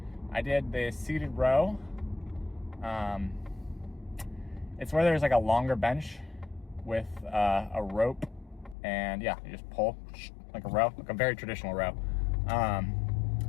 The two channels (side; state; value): right; drops out; at 8.8 s